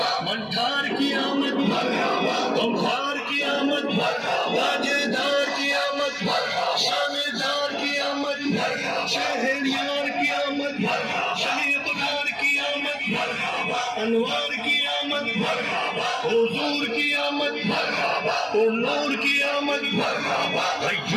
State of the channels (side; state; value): both; identical; correlation 1.00